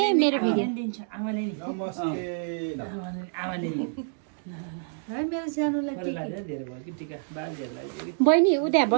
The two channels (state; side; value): silent; left; digital silence